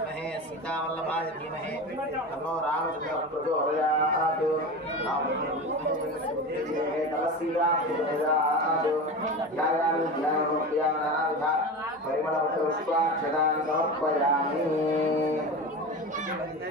सीतावल्लभाय धीमहि तन्नो रामचंद्रः प्रचोदयात्। परिमళपुष्पाक्षतानि समर्पयामि।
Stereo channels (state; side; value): normal; both; correlation 0.27